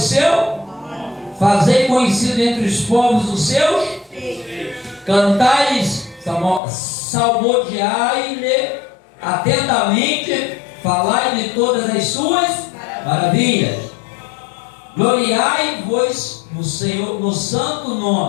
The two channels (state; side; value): drops out; right; at 6.6 s